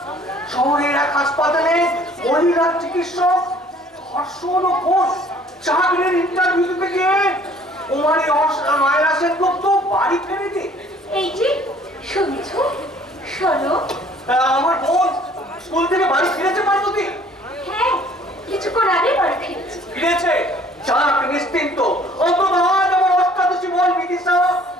শহরের এক হাসপাতালে মহিলা চিকিৎসক ধর্ষণ ও খুন, চাকরির ইন্টারভিউ দিতে গিয়ে কুমারী মায়েরা সেনগুপ্ত বাড়ি ফেরে দিয়ে। এই যে শুনছো, শোনো। আমার বোন স্কুল থেকে বাড়ি ফিরেছে পার্বতী? হ্যাঁ, কিছুক্ষণ আগে বাড়ি ফিরেছি। ফিরেছে? যাক, নিশ্চিন্ত। অন্তত আজ আমার অষ্টাদশী বোন বিদিশা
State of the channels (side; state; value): both; normal; correlation 0.55